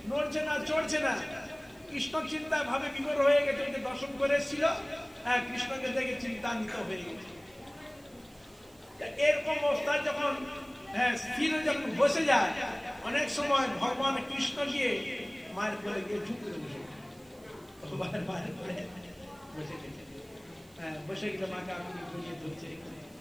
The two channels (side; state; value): right; noise; hiss, 28 dB below the sound